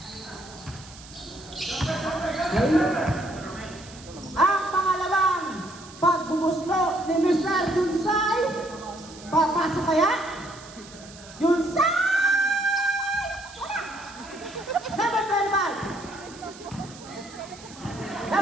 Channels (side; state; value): right; noise; hiss, 19 dB below the sound